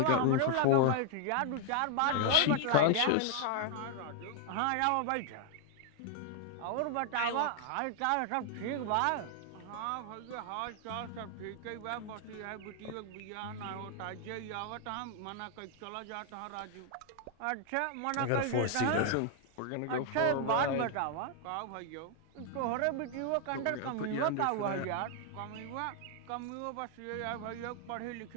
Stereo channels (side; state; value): both; different; correlation 0.00